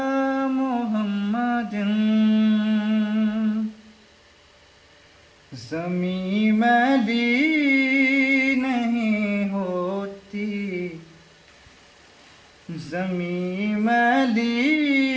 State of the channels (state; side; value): identical; both; correlation 1.00